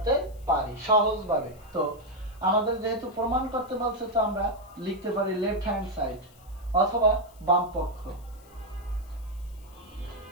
পারি সহজভাবে। তো আমাদের যেহেতু প্রমাণ করতে বলছে, তো আমরা লিখতে পারি লেফট হ্যান্ড সাইড অথবা বাম পক্ষ।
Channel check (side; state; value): left; noise; hiss, 27 dB below the sound